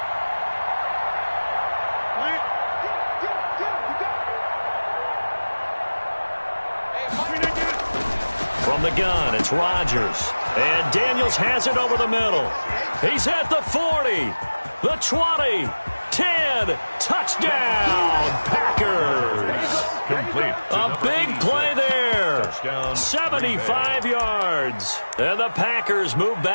From the gun, it's Rodgers. And Daniels has it over the middle. He's at the 40, the 20, 10, touchdown, Packers. Complete. A big play there. 75 yards. And the Packers move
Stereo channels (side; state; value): both; inverted; correlation -1.00